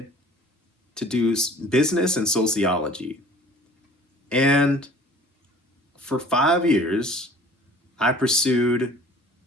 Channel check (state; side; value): normal; both; correlation 0.49